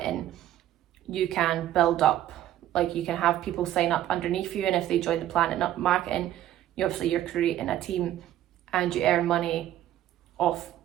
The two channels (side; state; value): left; quieter; 12.8 dB